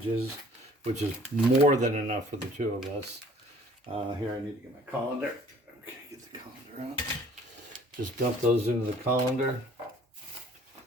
which is more than enough for the 2 of us. Here, I need to get my colander. Okay, get the colander out. Just dump those into the colander.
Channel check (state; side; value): normal; both; correlation 0.54